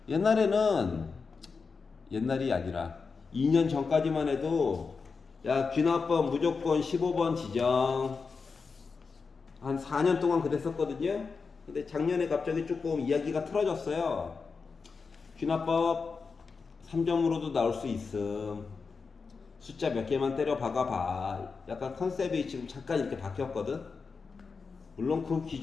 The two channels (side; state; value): right; quieter; 4.9 dB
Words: 옛날이 아니라 2년 전까지만 해도 야, 귀납번 무조건 15번 지정. 한 4년 동안 그랬었거든요. 근데 작년에 갑자기 조금 이야기가 틀어졌어요. 귀납법 3점으로도 나올 수 있음. 숫자 몇 개만 때려 박아봐. 약간 컨셉이 지금 잠깐 이렇게 바뀌었거든. 물론 그